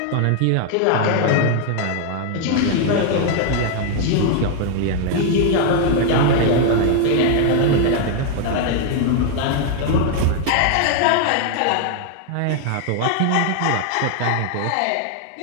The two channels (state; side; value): different; both; correlation 0.00